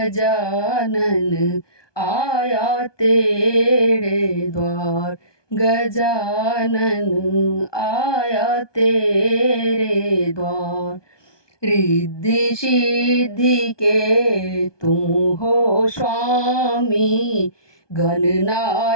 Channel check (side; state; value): right; late; 1.2 ms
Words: आया तेरे द्वार। गजानन आया तेरे द्वार। रिद्धि सिद्धि के तुम हो स्वामी,